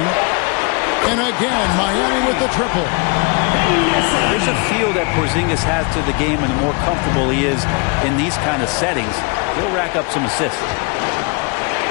And again, Miami with the triple. There's a feel that Porzingis has to the game, and the more comfortable he is in these kind of settings, he'll rack up some assists.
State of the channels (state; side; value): quieter; right; 30.9 dB